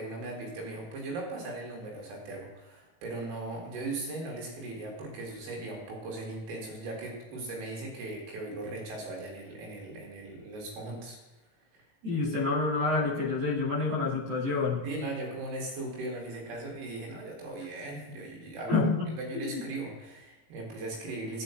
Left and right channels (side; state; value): left; late; 19 ms